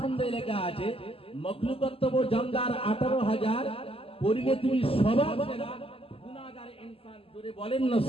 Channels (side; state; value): right; late; 0.27 ms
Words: লেখা আছে মাখলুকাত তব জানলার 18,000, পড়িলে তুমি সবার সেরা গুনাহগার ইনসান। জোরে বলেন না